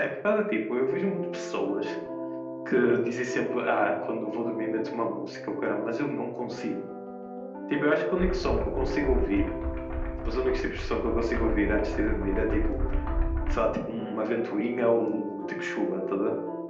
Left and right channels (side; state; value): both; identical; correlation 1.00